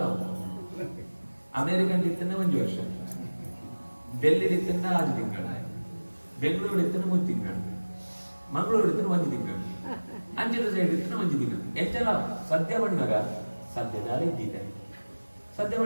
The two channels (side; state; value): both; inverted; correlation -1.00